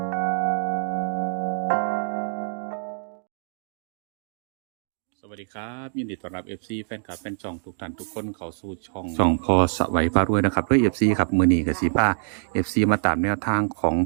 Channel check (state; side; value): silent; left; 62 dB below the other